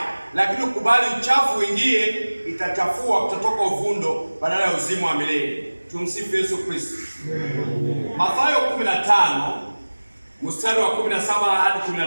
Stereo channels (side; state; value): both; inverted; correlation -1.00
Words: Lakini ukubali uchafu uingie, itachafua, utatoka uvundo badala ya uzima wa milele. Tumsifu Yesu Kristo. Mathayo 15 mstari wa 17 hadi